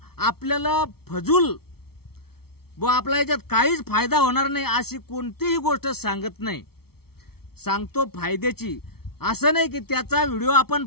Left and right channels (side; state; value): right; late; 0.95 ms